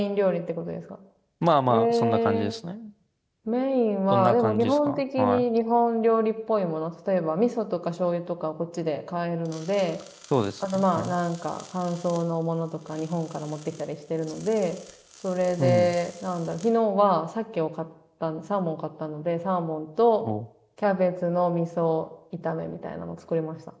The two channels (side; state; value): both; identical; correlation 1.00